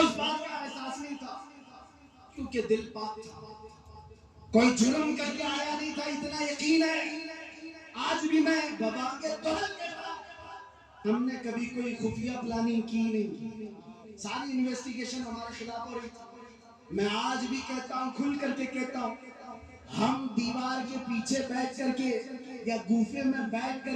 بات کا احساس نہیں تھا کیونکہ دل پاک تھا، کوئی جرم کر کے آیا نہیں تھا، اتنا یقین ہے۔ آج بھی میں بابا کے دہل کے ساتھ، ہم نے کبھی کوئی خفیہ پلاننگ کی نہیں، ساری انویسٹیگیشن ہمارے خلاف ہو رہی تھی۔ میں آج بھی کہتا ہوں، کھل کر کے کہتا ہوں، ہم دیوار کے پیچھے بیٹھ کر کے یا گوفے میں بیٹھ کر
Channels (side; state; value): both; identical; correlation 1.00